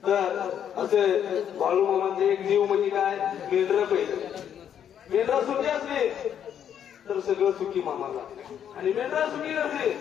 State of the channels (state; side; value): quieter; right; 9.1 dB